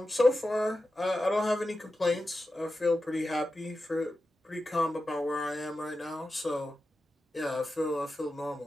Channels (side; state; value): both; normal; correlation 0.92